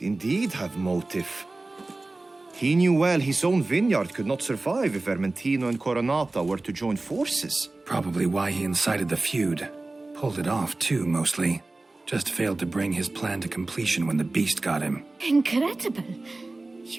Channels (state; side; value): quieter; left; 3.1 dB